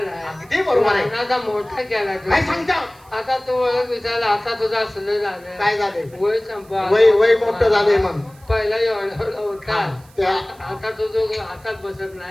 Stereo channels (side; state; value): right; noise; hiss, 28 dB below the sound